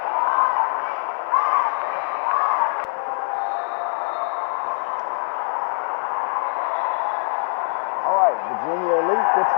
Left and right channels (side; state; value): right; silent; 57 dB below the other